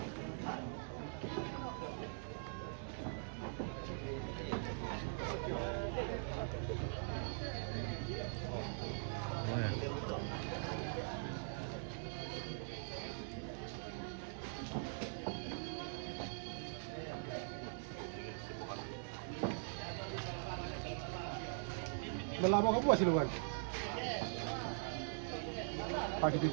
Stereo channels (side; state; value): left; silent; digital silence